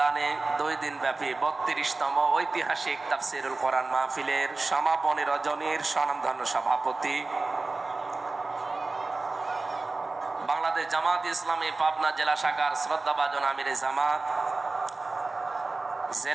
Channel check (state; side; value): quieter; left; 3.5 dB